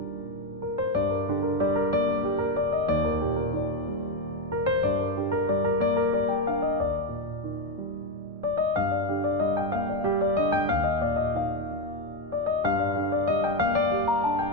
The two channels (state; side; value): normal; both; correlation 0.10